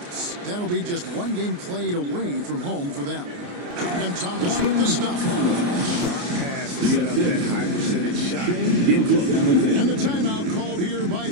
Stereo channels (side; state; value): left; late; 28 ms